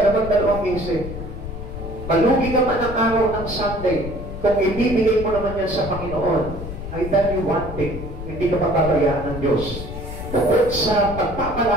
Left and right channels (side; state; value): left; noise; rumble, 9 dB below the sound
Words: naman dalawang isip. Malugi ka man ang araw ng Sunday, kung ibibigay mo naman yan sa Panginoon, I tell you one thing, hindi ka papabayaan ng Diyos. Bukod sa